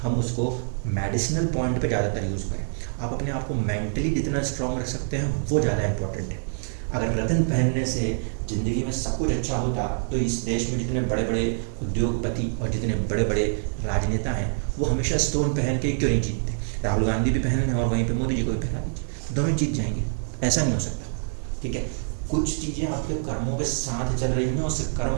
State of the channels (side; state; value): left; silent; digital silence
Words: उसको मेडिसिनल पॉइंट पे ज़्यादातर यूज़ करें। आप अपने आप को मेंटली जितना स्ट्रॉन्ग रख सकते हैं वो ज़्यादा इंपॉर्टेंट है। अगर रत्न पहनने से ज़िंदगी में सब कुछ अच्छा होता तो इस देश में जितने बड़े बड़े उद्योगपति और जितने बड़े बड़े राजनेता हैं वो हमेशा स्टोन पहन के क्यों नहीं जीतते। राहुल गांधी भी पहन रहे हैं और वहीं पे मोदी जी को भी पहना दीजिए, दोनों जीत जाएंगे। ऐसा नहीं हो सकता। ठीक है, कुछ चीज़ें आपके कर्मों के साथ चल रही हैं, उस कर्म